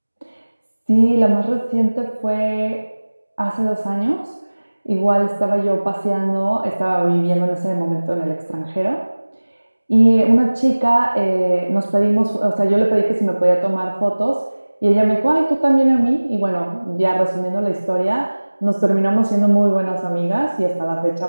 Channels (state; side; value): inverted; both; correlation -1.00